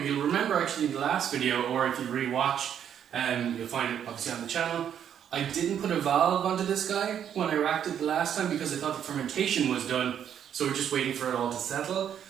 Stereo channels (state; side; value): quieter; left; 9.1 dB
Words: remember actually in the last video, or if you re-watch, you'll find it obviously on the channel. I didn't put a valve onto this guy when I racked it the last time because I thought the fermentation was done, so we're just waiting for it all to settle.